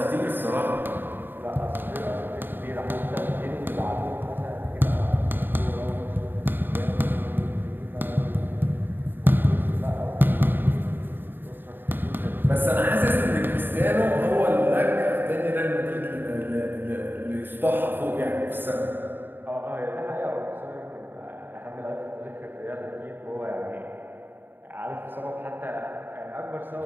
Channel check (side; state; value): left; late; 0.094 ms